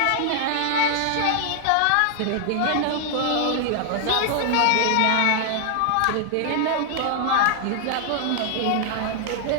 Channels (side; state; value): both; different; correlation 0.00